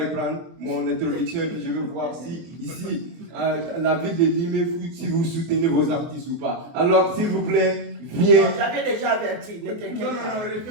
mon introduction et puis je veux voir si ici, la ville de Limé, si vous soutenez vos artistes ou pas. Alors, s'il vous plaît, viens. J'avais déjà averti, ne t'inquiète Non, pas.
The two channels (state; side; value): late; left; 24 ms